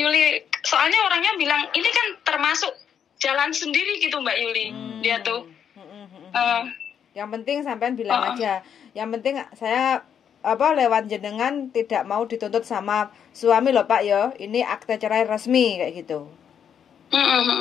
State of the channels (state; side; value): quieter; right; 8.2 dB